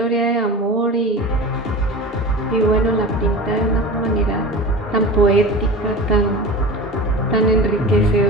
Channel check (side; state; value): both; normal; correlation 0.32